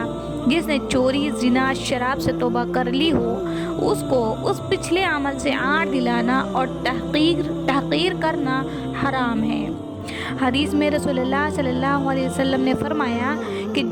जिसने चोरी ज़िना शराब से तौबा कर ली हो, उसको उस पिछले अमल से आड़ दिलाना और तहक़ीर करना हराम है। हदीस में रसूलुल्लाह सल्लल्लाहु अलैहि वसल्लम ने फरमाया कि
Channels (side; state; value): both; identical; correlation 1.00